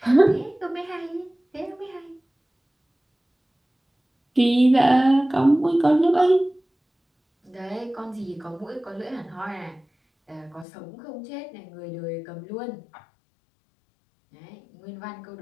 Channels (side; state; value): right; drops out; at 10.7 s